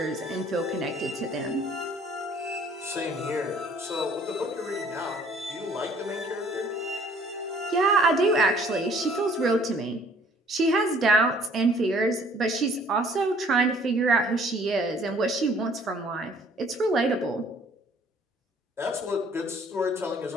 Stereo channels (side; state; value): both; normal; correlation 0.57